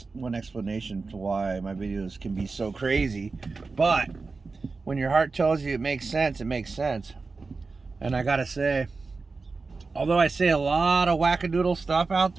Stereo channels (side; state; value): left; quieter; 4.1 dB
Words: one explanation to why my videos can be so crazy. But when your heart tells you it makes sense, it makes sense. And I gotta say, although I say a lot of wackadoodle stuff out